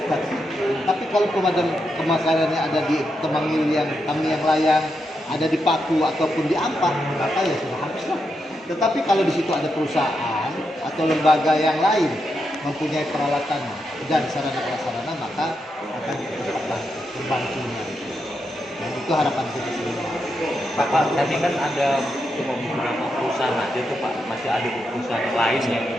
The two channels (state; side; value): normal; both; correlation 0.84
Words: Tapi kalau kebakarannya ada di Temangil yang kami yang layang, ada di Paku ataupun di Ampah, maka ya sudah habislah. Tetapi kalau di situ ada perusahaan atau lembaga yang lain mempunyai peralatan dan sarana-prasarana, maka akan cepat membantunya. Dan itu harapan kita semua. Pak, tadi kan ada cuma beberapa perusahaan aja tuh Pak, masih ada perusahaan lain yang